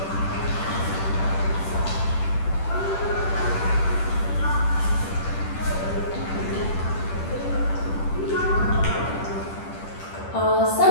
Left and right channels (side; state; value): right; late; 10 ms